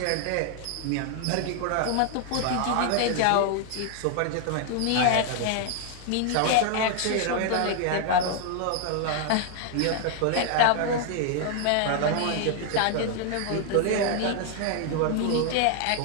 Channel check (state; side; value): different; both; correlation 0.00